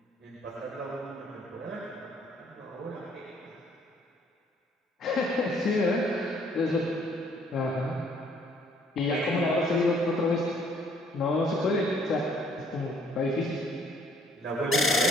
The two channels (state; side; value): normal; both; correlation 0.62